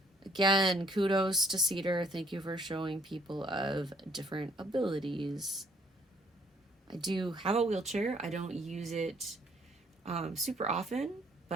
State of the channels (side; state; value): both; normal; correlation 0.64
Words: Again, kudos to Cedar. Thank you for showing people of different abilities. I do have a wheelchair. I don't use it super often,